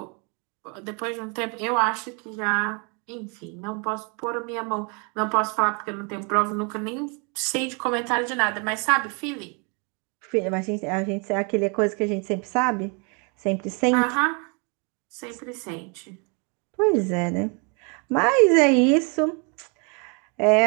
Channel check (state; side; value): quieter; left; 34.5 dB